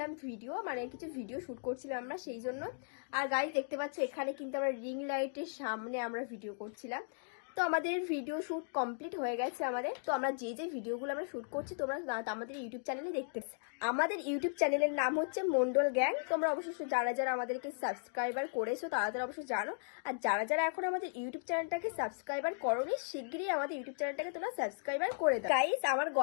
ভিডিও, মানে কিছু ভিডিও শুট করছিলাম আমরা সেই জন্য। আর গাইস দেখতে পাচ্ছ এখানে কিন্তু আমরা রিং লাইটের সামনে আমরা ভিডিও করছিলাম। তো আমাদের ভিডিও শুট কমপ্লিট হয়ে গেছে আমাদের। তো আমরা যে যে ভিডিওগুলো আমরা শুট করছি তোমরা আমাদের ইউটিউব চ্যানেলে দেখতে। আমাদের ইউটিউব চ্যানেলের নাম হচ্ছে মন্ডল গ্যাং। তোমরা অবশ্যই যারা যারা আমাদেরকে সাবস্ক্রাইবার করেছো তারা তারা অবশ্যই জানো। আর যারা যারা এখন আমাদের ইউটিউব চ্যানেলটাকে সাবস্ক্রাইবার করোনি, শিগগিরই আমাদের ইউটিউব চ্যানেলটাকে তোমরা সাবস্ক্রাইবার করে দাও। গাইস, আমার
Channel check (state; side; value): silent; right; digital silence